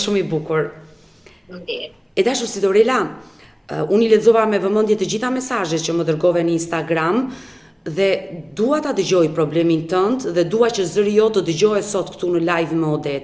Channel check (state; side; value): identical; both; correlation 1.00